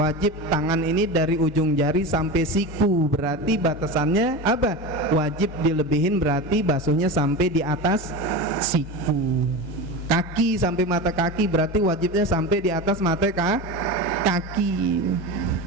tangan ini dari ujung jari sampai siku, berarti batasannya apa? Wajib dilebihin, berarti basuhnya sampai di atas siku. Kaki sampai mata kaki, berarti wajibnya sampai di atas mata kaki.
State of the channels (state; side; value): normal; both; correlation 0.25